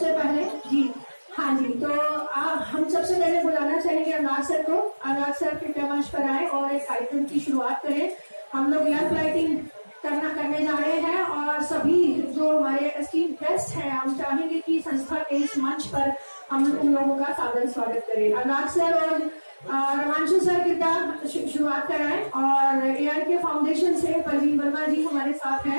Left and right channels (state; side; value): inverted; both; correlation -1.00